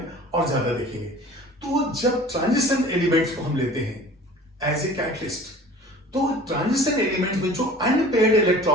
और ज्यादा देखेंगे। तो जब ट्रांजिशन एलिमेंट्स को हम लेते हैं एज ए कैटलिस्ट, तो ट्रांजिशन एलिमेंट्स में जो अनपेयर्ड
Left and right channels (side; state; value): both; normal; correlation 0.44